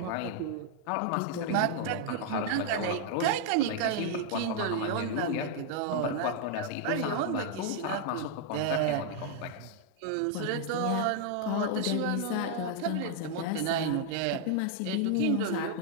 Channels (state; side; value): different; both; correlation 0.00